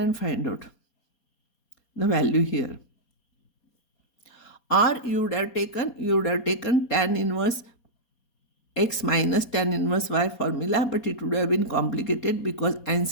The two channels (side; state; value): right; late; 4.2 ms